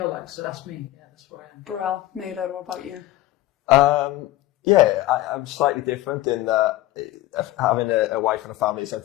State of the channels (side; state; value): right; quieter; 16.1 dB